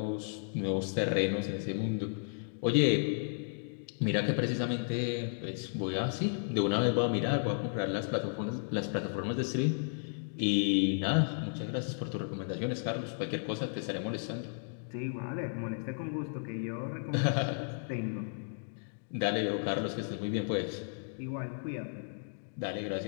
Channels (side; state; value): right; silent; digital silence